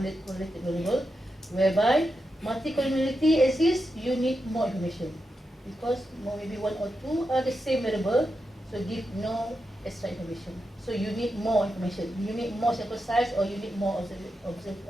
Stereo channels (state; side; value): normal; both; correlation 0.87